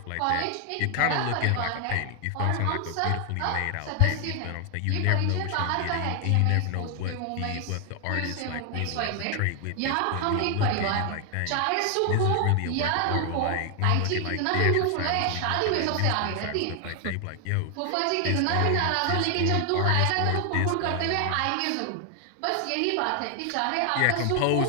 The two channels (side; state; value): both; different; correlation 0.00